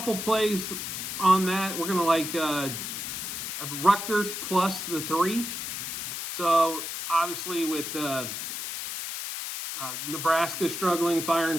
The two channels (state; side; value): noise; left; hiss, 5 dB below the sound